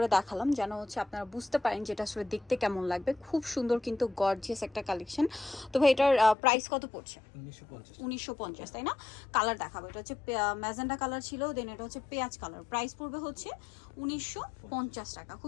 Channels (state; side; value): drops out; right; at 6.4 s